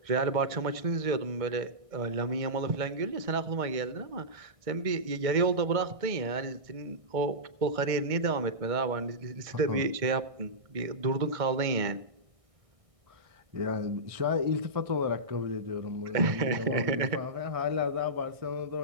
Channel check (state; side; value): late; left; 1.6 ms